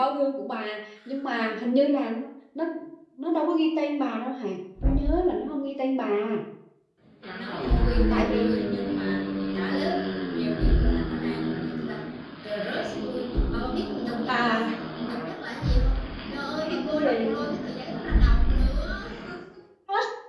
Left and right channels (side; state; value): both; identical; correlation 1.00